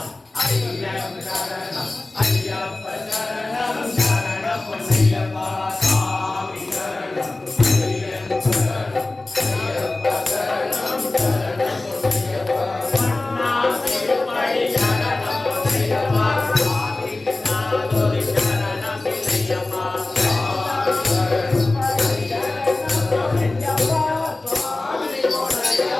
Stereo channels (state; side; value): quieter; right; 3.0 dB